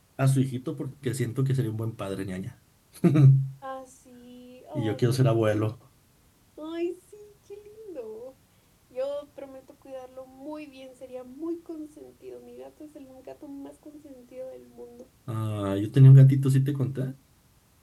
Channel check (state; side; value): identical; both; correlation 1.00